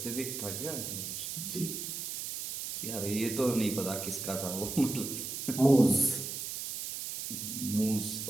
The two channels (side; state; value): right; noise; hiss, 5 dB below the sound